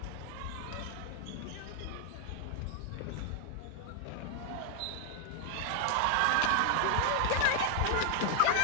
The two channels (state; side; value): different; both; correlation 0.00